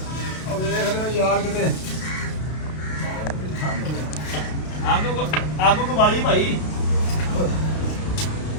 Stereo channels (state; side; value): late; right; 32 ms